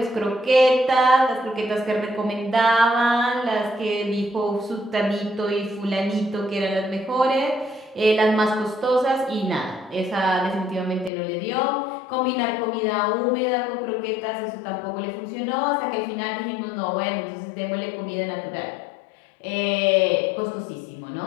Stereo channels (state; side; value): drops out; right; at 11.1 s